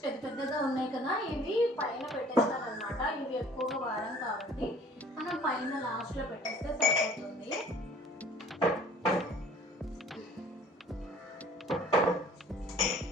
పెద్దగా ఉన్నాయి కదా, ఇవి పైన పెట్టేస్తాను అనమాట. ఇవి ఎక్కువగా వాడం కాబట్టి మనం పైన లాస్ట్లో పెట్టేస్తే సరిపోతుంది.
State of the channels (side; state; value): both; normal; correlation 0.52